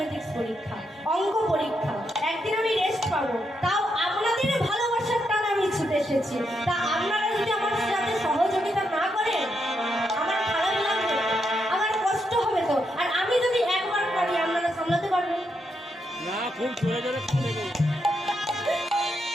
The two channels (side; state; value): both; normal; correlation 0.81